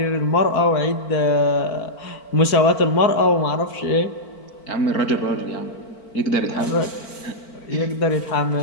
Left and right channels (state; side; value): late; right; 4.5 ms